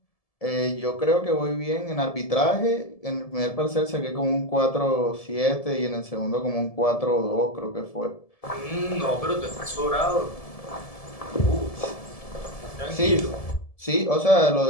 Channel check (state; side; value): late; right; 1.7 ms